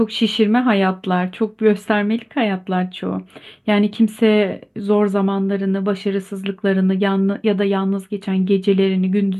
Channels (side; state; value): both; identical; correlation 1.00